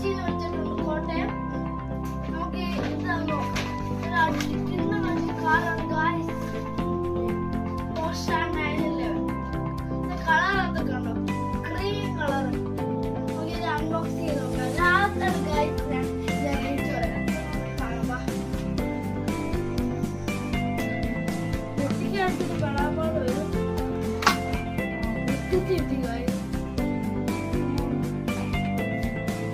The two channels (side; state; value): both; identical; correlation 1.00